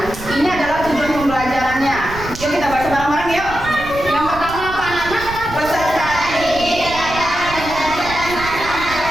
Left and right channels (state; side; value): noise; right; rumble, 12 dB below the sound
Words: ini adalah tujuan pembelajarannya. Yuk kita baca bareng-bareng yuk. Yang pertama apa anak-anak? Peserta didik.